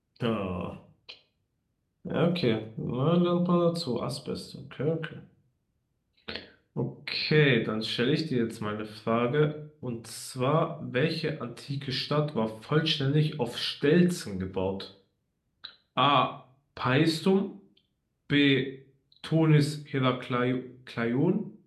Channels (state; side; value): identical; both; correlation 1.00